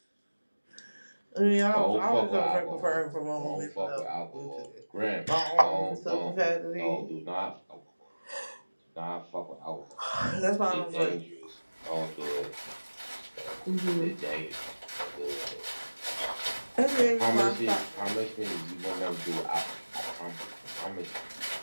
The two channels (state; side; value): inverted; both; correlation -1.00